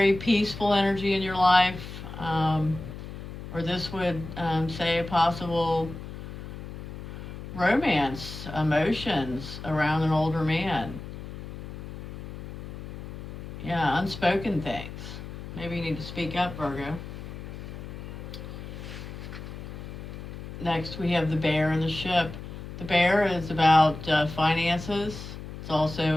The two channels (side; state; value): left; noise; hum, 10 dB below the sound